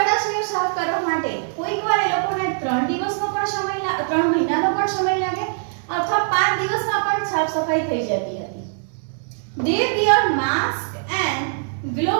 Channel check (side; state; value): left; silent; 64 dB below the other